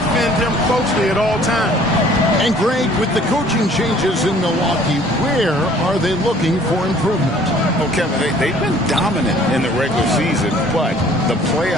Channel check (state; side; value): normal; both; correlation 0.55